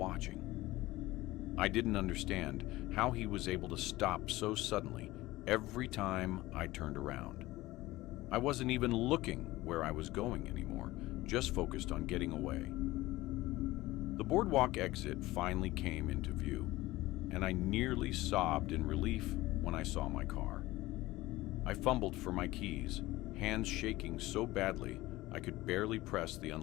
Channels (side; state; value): right; quieter; 18.3 dB